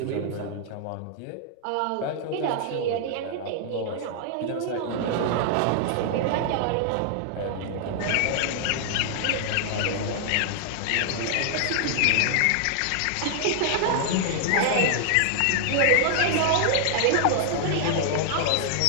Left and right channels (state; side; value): different; both; correlation 0.00